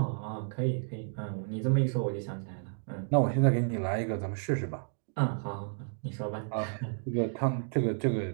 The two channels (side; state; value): left; silent; digital silence